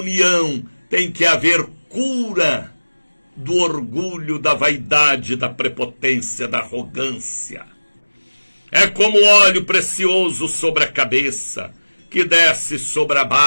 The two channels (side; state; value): both; inverted; correlation -1.00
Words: tem que haver cura do orgulho, da vaidade, da prepotência, da arrogância. É como óleo precioso sobre a cabeça, que desce sobre a